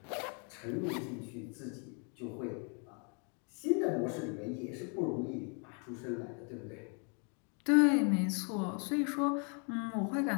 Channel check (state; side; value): quieter; right; 38.6 dB